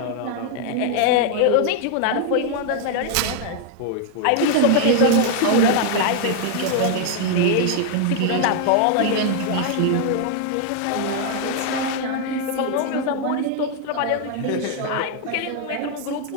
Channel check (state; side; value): different; both; correlation 0.00